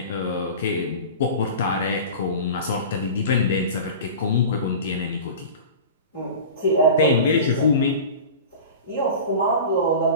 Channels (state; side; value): inverted; both; correlation -0.34